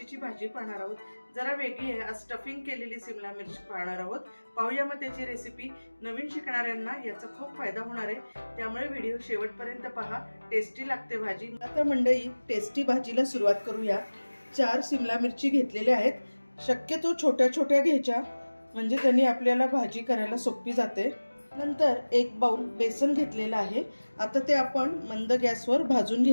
भाजी पाहणार आहोत। जरा वेगळी आहे, आज स्टफिंग केलेली सिमला मिरची पाहणार आहोत। पाहूया मग त्याची रेसिपी। नवीन शिकणाऱ्यांना याचा खूप फायदा होणार आहे, त्यामुळे व्हिडिओ शेवटपर्यंत पहा। टेस्टी लागते भाजी। आता मंडळी टेस्टी भाजीला सुरुवात करूया। 4 सिमला मिरची घेतलेल्या आहेत। शक्यतो छोट्या छोट्या घ्यायच्या, म्हणजे त्यांनी आपल्याला भाजी करायला सोपी जाते। नंतर 1 बाउल बेसन घेतलेला आहे। आता ते आपण मंद गॅसवर भाजून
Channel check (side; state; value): both; inverted; correlation -1.00